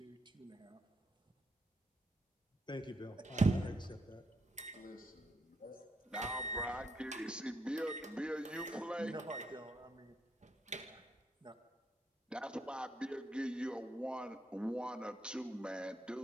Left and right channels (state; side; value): normal; both; correlation 0.77